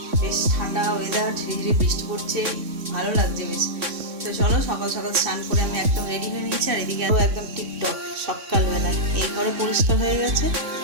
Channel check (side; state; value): left; late; 3.6 ms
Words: বেশ ঠান্ডা ওয়েদার, ঝিরিঝিরি বৃষ্টি পড়ছে, ভালো লাগছে বেশ। তো চলো সকাল সকাল স্নান করে আমি একদম রেডি হয়ে নিয়েছি। আর এদিকে একদম টিপটপ সকালবেলায় এই ঘরও পরিষ্কার হয়ে গেছে,